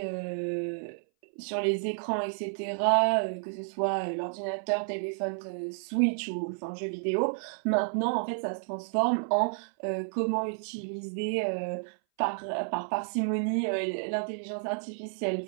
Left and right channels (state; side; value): silent; left; 57 dB below the other